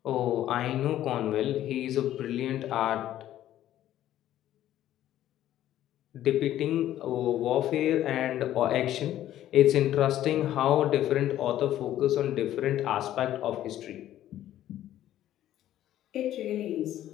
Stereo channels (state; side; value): quieter; right; 12.6 dB